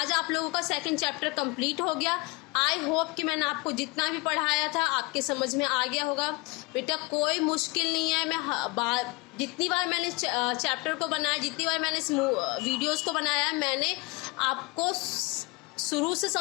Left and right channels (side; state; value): right; quieter; 25.1 dB